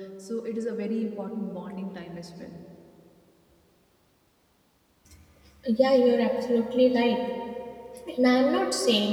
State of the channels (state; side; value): identical; both; correlation 1.00